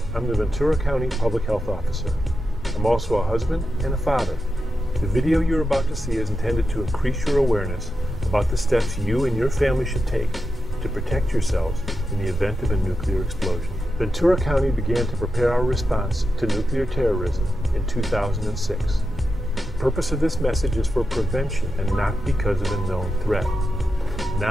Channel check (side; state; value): both; normal; correlation 0.89